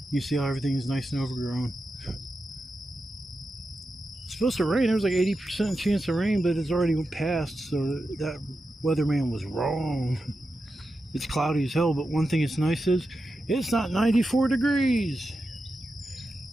You see how everything is nice and overgrown. It's supposed to rain. There was like 80% chance of rain, but it's already passed, so that weatherman was wrong. It's cloudy as hell, but one thing that's nice is it's not 94 degrees.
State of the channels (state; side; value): normal; both; correlation 0.90